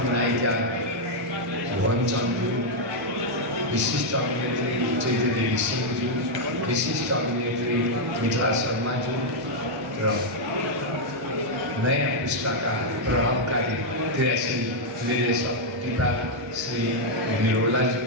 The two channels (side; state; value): both; normal; correlation -0.02